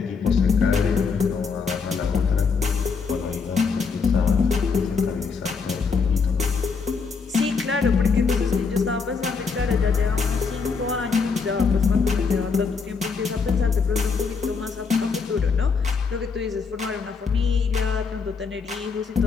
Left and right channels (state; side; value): quieter; right; 5.2 dB